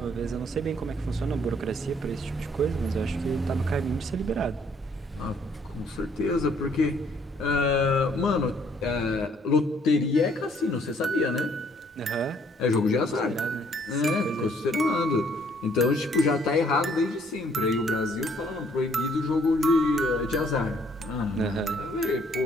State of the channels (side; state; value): both; normal; correlation 0.64